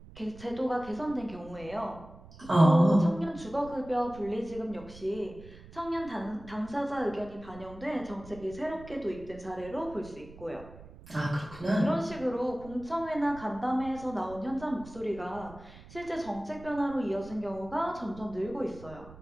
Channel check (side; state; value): right; noise; rumble, 18 dB below the sound